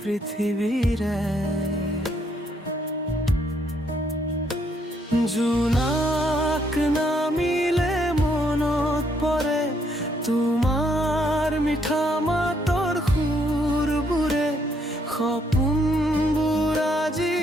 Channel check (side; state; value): both; normal; correlation 0.71